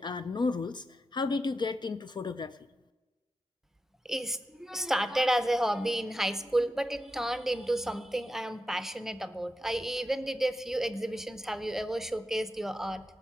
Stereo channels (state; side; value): normal; both; correlation 0.88